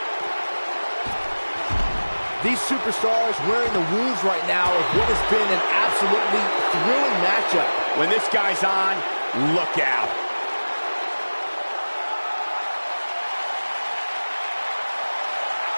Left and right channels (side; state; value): both; inverted; correlation -1.00